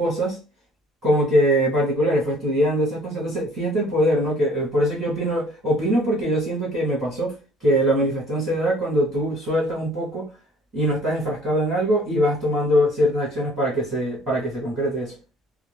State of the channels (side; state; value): both; normal; correlation 0.55